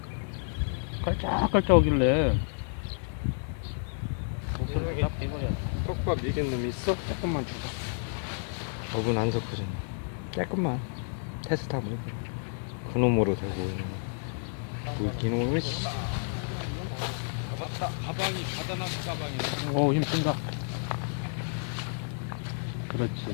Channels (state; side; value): silent; right; digital silence